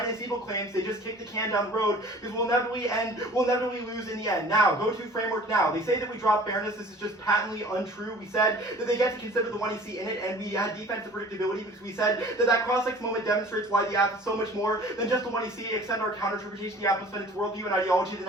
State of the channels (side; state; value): both; normal; correlation 0.46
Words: is evil claims, they just kick the can down the road because we'll inevitably lose in the end. Now, go to framework now. They say that we drop fairness. This is just patently untrue. We said that they get to consider the one you see in it, and we had defensive predictability because we said that that cross-sex moment demonstrates why the app is so much more than just the one you see. Extend our counter-interpretation, the app must spend its worldview and ideology that